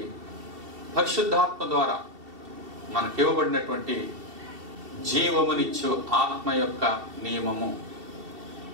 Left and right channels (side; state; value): left; late; 2.7 ms